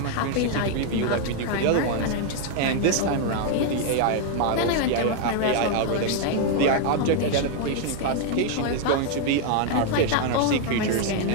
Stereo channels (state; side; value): different; both; correlation 0.00